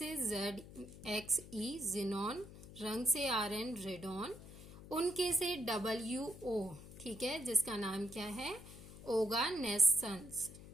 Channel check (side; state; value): left; noise; hum, 16 dB below the sound